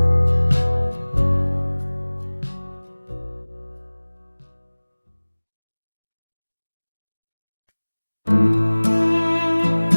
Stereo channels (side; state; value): both; inverted; correlation -1.00